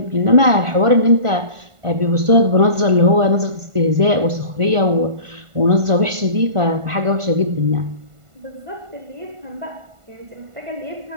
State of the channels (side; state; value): left; late; 1.5 ms